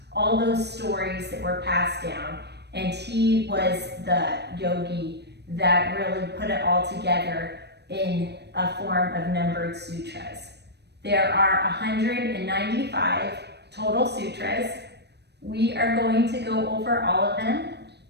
all those stories that were passed down, and he was the yogi that really put it all together in a form of numbered sutras. There are 195 total sutras. We are going to go over all of them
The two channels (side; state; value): left; late; 0.49 ms